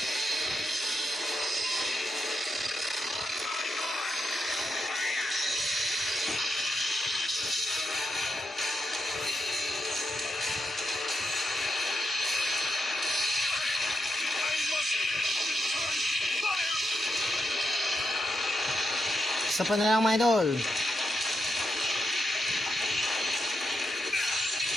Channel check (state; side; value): normal; both; correlation 0.85